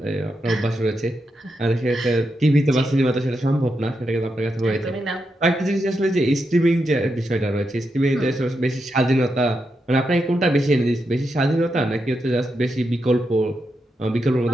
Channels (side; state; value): both; normal; correlation 0.85